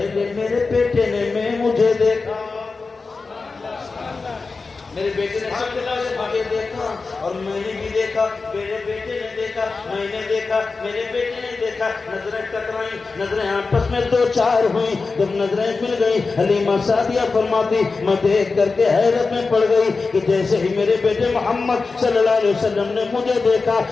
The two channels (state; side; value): quieter; right; 4.2 dB